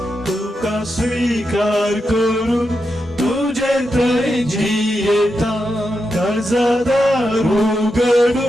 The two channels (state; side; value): normal; both; correlation 0.87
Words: तुका स्वीकार करून तुझे ते जियेता काळजादारू